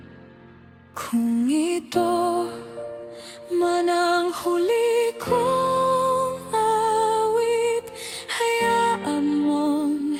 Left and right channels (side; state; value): both; identical; correlation 1.00